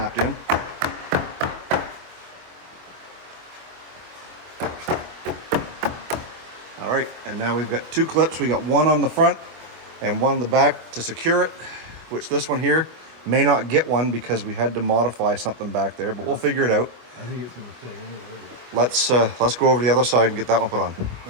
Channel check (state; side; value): late; left; 25 ms